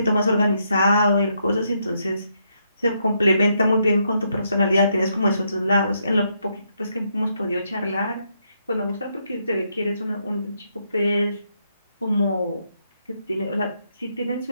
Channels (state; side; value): inverted; both; correlation -0.77